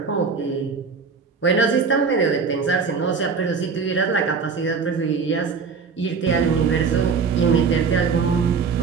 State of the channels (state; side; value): quieter; left; 5.3 dB